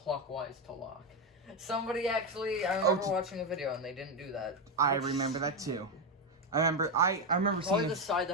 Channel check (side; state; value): both; normal; correlation 0.09